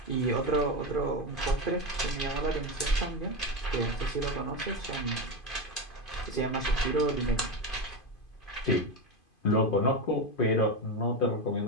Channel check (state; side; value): late; right; 2.5 ms